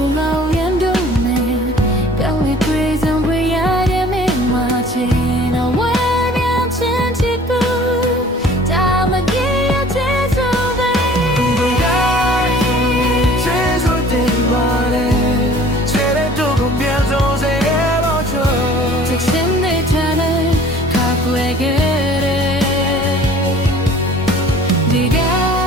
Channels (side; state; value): both; normal; correlation 0.50